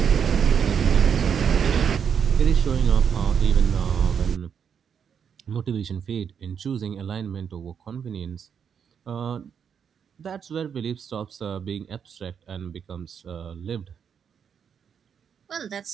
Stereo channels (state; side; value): quieter; left; 7.4 dB